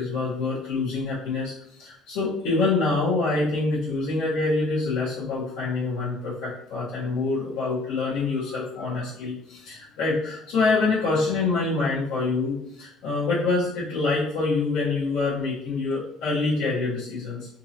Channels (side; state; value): right; quieter; 3.2 dB